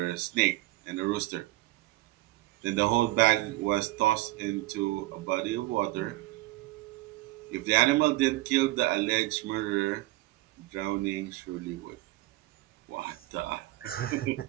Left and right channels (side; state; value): left; quieter; 18.3 dB